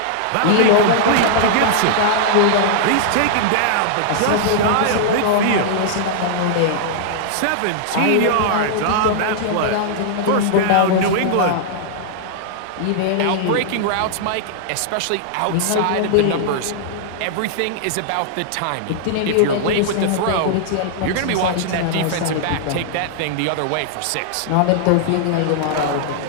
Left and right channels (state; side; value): different; both; correlation -0.01